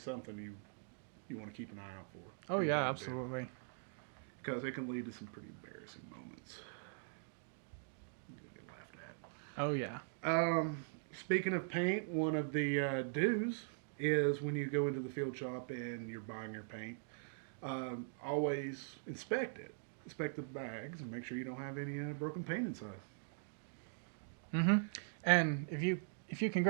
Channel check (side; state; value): left; silent; digital silence